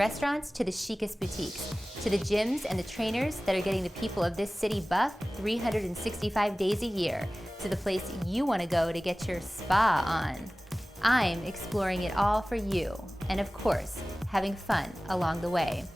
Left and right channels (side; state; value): both; normal; correlation 0.98